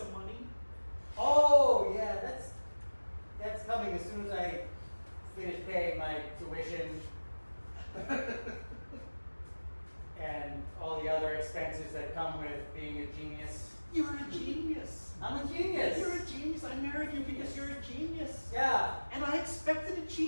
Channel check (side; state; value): both; inverted; correlation -1.00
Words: money? Oh, yeah, that's coming as soon as I finish paying my tuition and all the other expenses that come with being a genius. You're a genius. I'm a genius. You're a genius. I married you because you're a genius. Yeah, And I expected a